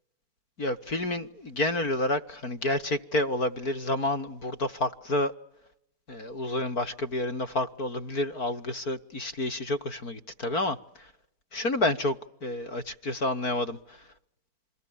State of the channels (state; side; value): late; right; 4.5 ms